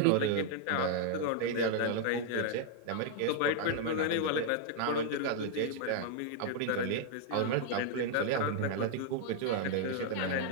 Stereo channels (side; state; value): both; different; correlation 0.00